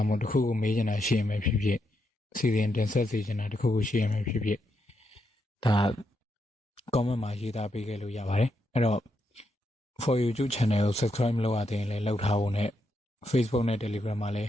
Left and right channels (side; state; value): both; normal; correlation 0.81